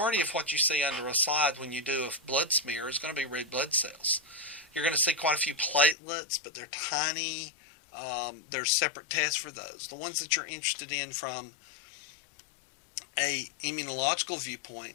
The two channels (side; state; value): right; drops out; at 6.0 s